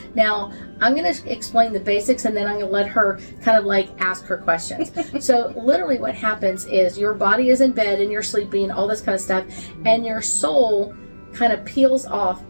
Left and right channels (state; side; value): inverted; both; correlation -1.00